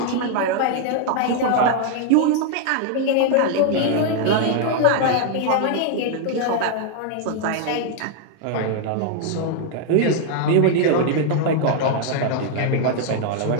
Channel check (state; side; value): different; both; correlation 0.00